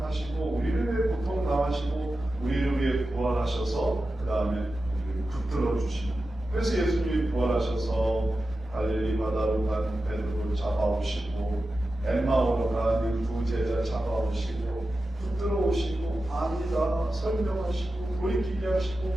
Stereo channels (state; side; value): normal; both; correlation 0.93